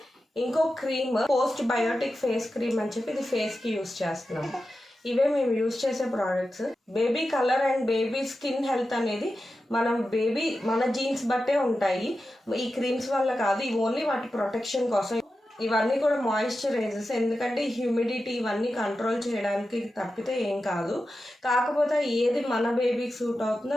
ఇంకో cream postbiotic face cream అని చెప్పి ఇది ఫేస్కి యూస్ చేస్తున్నాము. ఇవే మేము యూస్ చేసే products. Baby colour and baby skin health అనేది మన జీన్స్ బట్టే ఉంటాయి. ఈ క్రీమ్స్ వల్ల కాదు, ఇవి ఓన్లీ వాటి ప్రొటెక్షన్ కోసం. ఇవన్నీ కూడా మాయిశ్చరైజర్స్, ఎందుకంటే హ్యూమిడిటీ ఇవన్నీ కంట్రోల్ చేయడానికి తప్పితే ఏం కాదు. కాకపోతే ఏది మన బేబీకి సూట్ అవుతుందో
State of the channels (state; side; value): normal; both; correlation 0.92